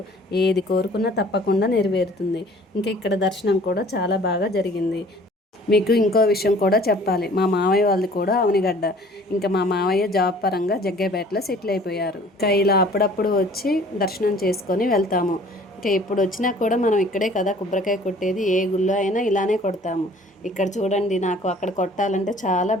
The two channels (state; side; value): normal; both; correlation 0.52